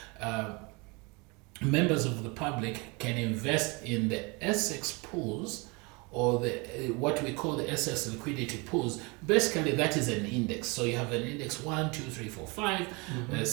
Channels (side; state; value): left; quieter; 28.3 dB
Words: members of the public can invest in the ACEX pools, or what we call the ACEX liquidity pools. Basically, that is an index. So you have an index 1, 2, 3, 4, 5,